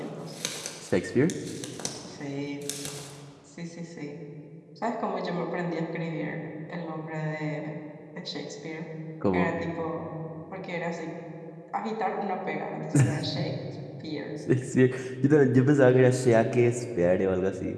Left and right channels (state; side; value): identical; both; correlation 1.00